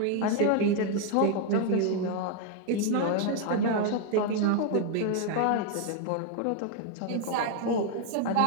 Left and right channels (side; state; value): both; different; correlation 0.00